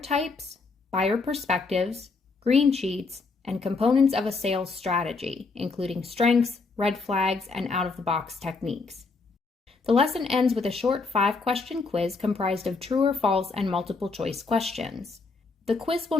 buyer perspectives, green sheets, and components of a sales strategy, including strengths, red flags, and out-of-the-box techniques. The lesson ends with a short 5-question quiz comprised of true or false and multiple-choice questions. The quiz will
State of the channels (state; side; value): quieter; right; 4.1 dB